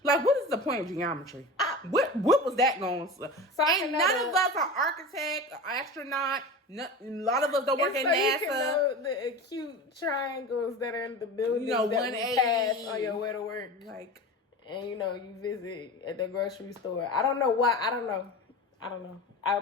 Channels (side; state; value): both; normal; correlation 0.30